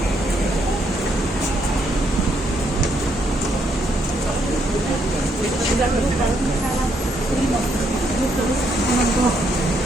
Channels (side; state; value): both; normal; correlation 0.74